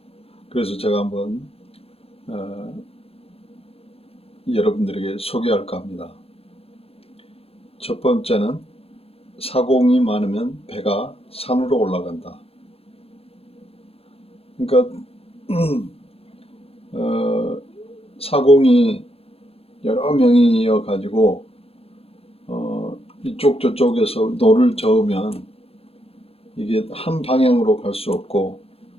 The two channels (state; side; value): late; right; 0.28 ms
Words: 그래서 제가 한번 여러분들에게 소개할까 합니다. 첫 번째는 사공이 많으면 배가 산으로 올라간다. 그러니까 사공이 여러 명이어 가지고 이쪽 저쪽에서 노를 저으면 이게 한 방향으로 갈 수 없고